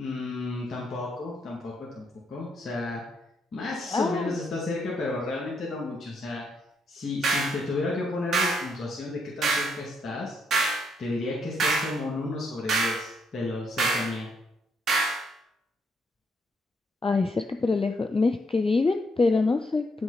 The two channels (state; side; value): normal; both; correlation 0.75